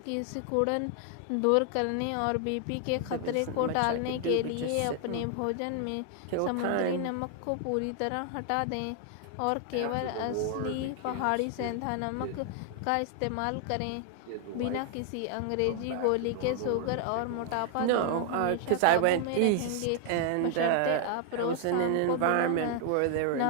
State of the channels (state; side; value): different; both; correlation 0.00